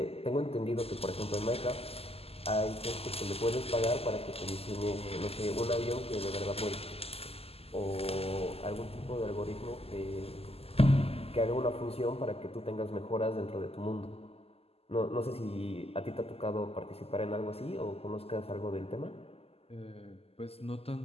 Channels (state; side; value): late; right; 0.29 ms